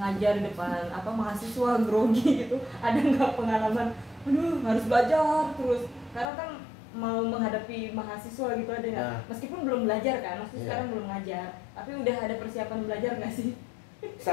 di depan mahasiswa, grogi gitu. Ada nggak pengalaman, aduh harus belajar terus, karena kan mau menghadapi mahasiswa gitu, ada nggak? Meskipun belum belajar kan, maksudnya sekarang belum ngajar, tapi udah ada persiapan belajar nggak sih?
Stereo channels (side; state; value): right; drops out; at 6.3 s